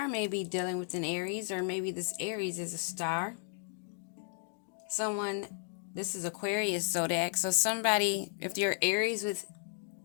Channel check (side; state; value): right; silent; 55 dB below the other